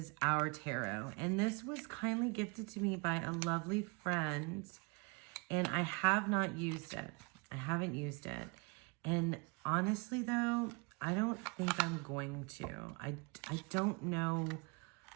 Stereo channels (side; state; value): left; quieter; 29.9 dB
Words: our tarot, and this was kindly gifted to me by a lovely friend, and I have not used it. I haven't used it. And honestly, though, I don't think I'm going to. I don't know.